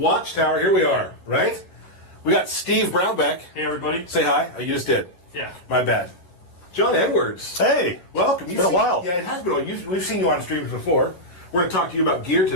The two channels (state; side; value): late; right; 11 ms